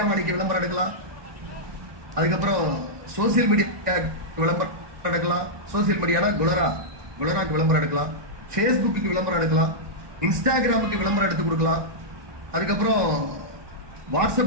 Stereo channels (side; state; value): left; late; 1.2 ms